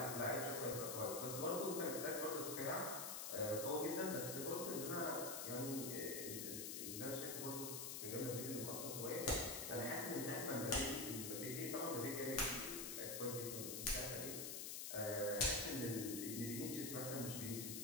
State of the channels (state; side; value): noise; left; hiss, 4 dB below the sound